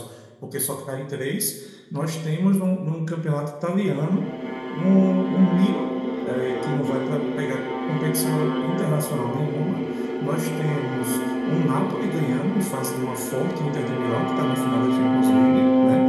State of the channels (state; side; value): identical; both; correlation 1.00